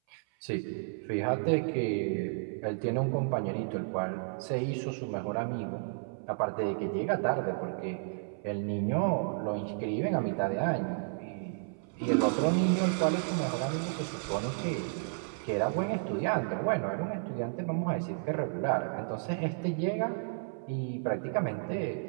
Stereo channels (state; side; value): silent; left; 56 dB below the other